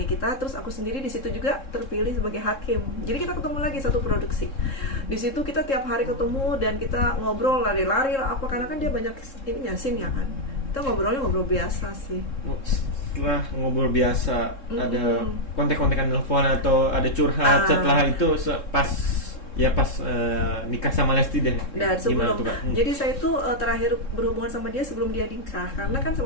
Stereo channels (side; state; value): right; late; 3.7 ms